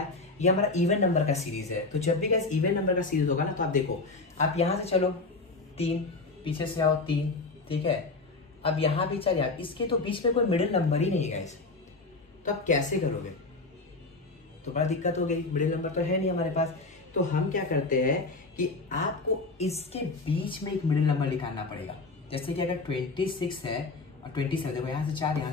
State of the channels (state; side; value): quieter; right; 3.5 dB